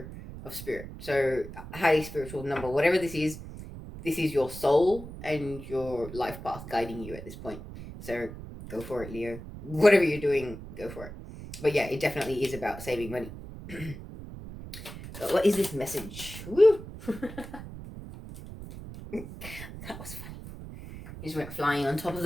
of spirit. So highly spiritual number. Whatever this is your soul and your life path guiding you at this point. So go for it, Leo. Whatever you're doing, go for it. But yeah, it definitely is about saving money. But what is this message? Woo! That was funny. He just went flying on top of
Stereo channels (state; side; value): noise; right; rumble, 12 dB below the sound